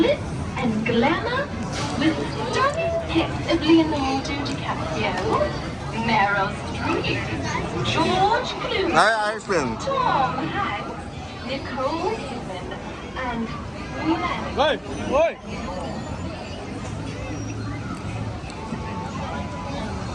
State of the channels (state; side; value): identical; both; correlation 1.00